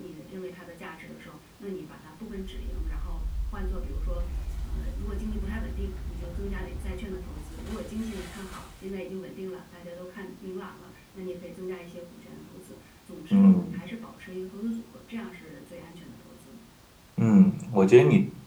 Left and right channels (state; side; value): identical; both; correlation 1.00